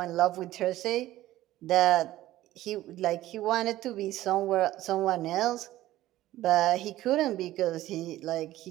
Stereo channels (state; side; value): quieter; left; 15.2 dB